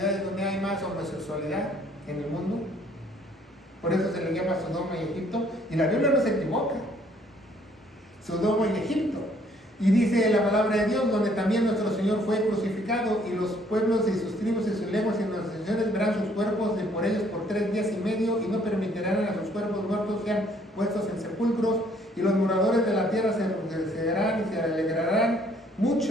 donde hay más homosexualidad en el mundo? Por eso se le llama Sodoma y Egipto. Y la Biblia no se equivoca. Sodoma y Egipto. Y dice la palabra de Dios, donde también nuestro Señor fue crucificado, y los pueblos y sus tribus y sus lenguas y las naciones verán sus cuerpos de por ellos por 3 días y medio, y no permitirán a sus cuerpos muertos sean puestos en sepulcros, y los moradores de la tierra se regocijarán y se alegrarán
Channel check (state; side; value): normal; both; correlation 0.63